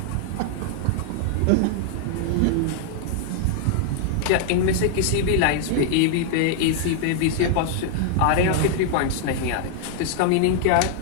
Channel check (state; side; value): different; both; correlation 0.00